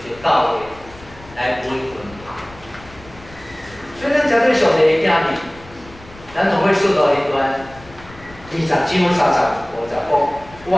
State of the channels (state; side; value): noise; left; rumble, 21 dB below the sound